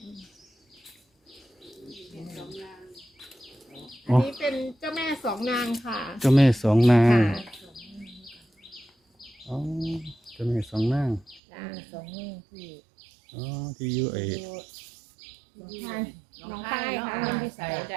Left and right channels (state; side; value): drops out; left; at 11.4 s